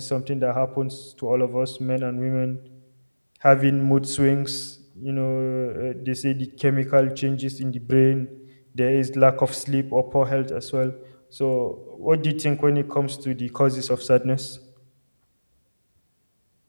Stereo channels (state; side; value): inverted; both; correlation -1.00